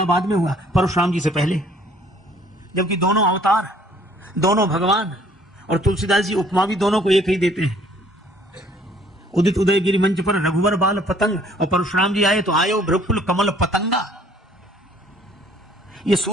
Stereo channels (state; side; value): normal; both; correlation 0.59